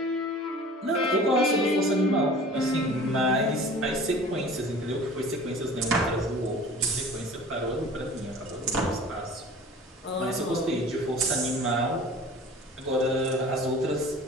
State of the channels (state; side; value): normal; both; correlation 0.44